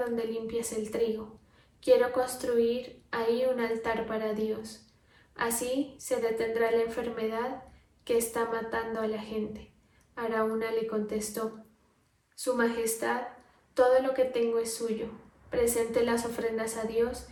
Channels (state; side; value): identical; both; correlation 1.00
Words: limpias el trigo. Quiero construir ahí un altar para Dios. Así se detendrá la enfermedad que está matando a la gente. Araúna le contestó: Su Majestad, todo lo que tengo es suyo. Presente las ofrendas a Dios,